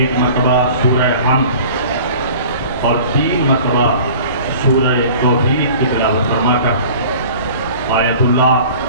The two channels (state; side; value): inverted; both; correlation -0.44